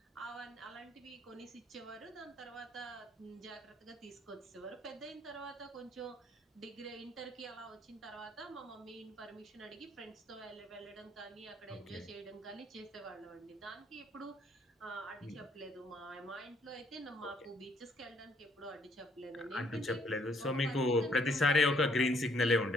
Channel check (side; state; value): both; normal; correlation 0.67